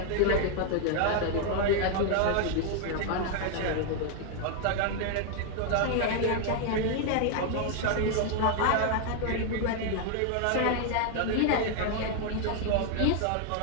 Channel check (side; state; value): both; different; correlation 0.00